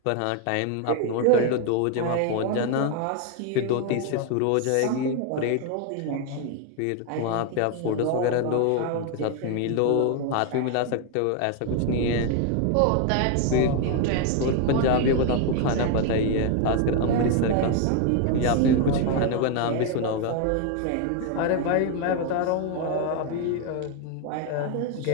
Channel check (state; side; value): different; both; correlation 0.01